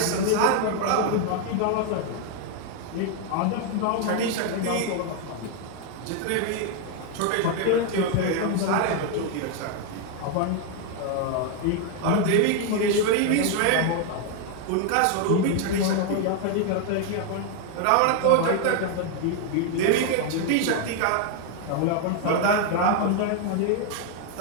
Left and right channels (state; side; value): different; both; correlation 0.01